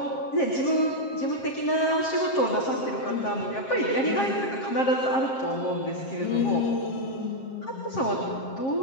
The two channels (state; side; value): late; right; 7.5 ms